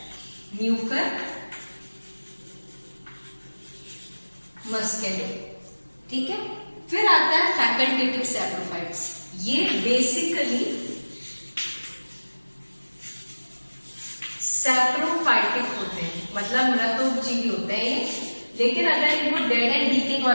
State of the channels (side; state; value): both; inverted; correlation -1.00